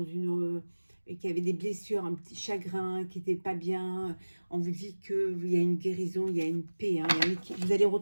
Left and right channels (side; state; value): both; inverted; correlation -1.00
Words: une... et qui avaient des blessures, un petit chagrin, qui n'étaient pas bien, on vous dit qu'il y a une guérison, il y a une paix. Hein, vous allez